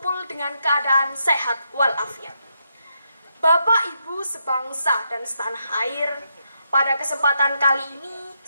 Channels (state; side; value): inverted; both; correlation -0.81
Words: dengan keadaan sehat walafiat. Bapak Ibu sebangsa dan setanah air, pada kesempatan kali ini